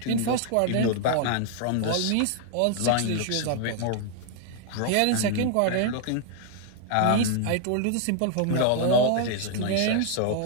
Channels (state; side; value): different; both; correlation 0.00